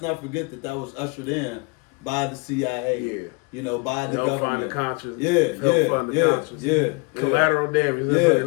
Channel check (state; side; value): quieter; right; 29.3 dB